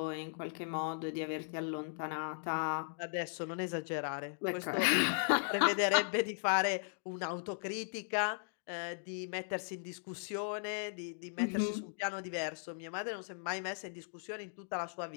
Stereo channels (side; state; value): right; silent; digital silence